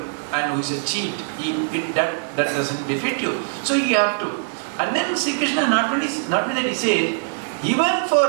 and who is a cheat. That doesn't befit you. So you have to. And then Sri Krishna not only that he says, even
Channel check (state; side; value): silent; left; digital silence